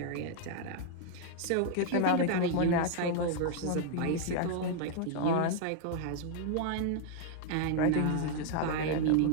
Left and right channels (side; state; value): both; different; correlation 0.00